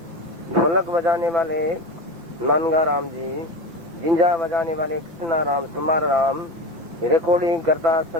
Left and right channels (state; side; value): late; left; 5.6 ms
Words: ढोलक बजाने वाले नानगा राम जी, जिंजा बजाने वाले कृष्णा राम समार राम, रिकॉर्डिंग करता